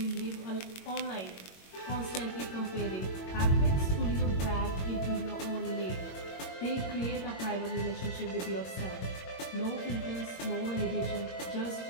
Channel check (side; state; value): right; late; 22 ms